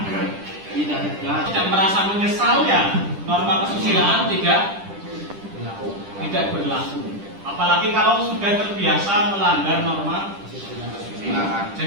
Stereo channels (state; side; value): late; left; 10 ms